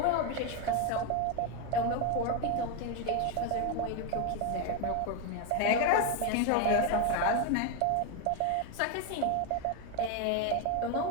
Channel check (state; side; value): different; both; correlation 0.01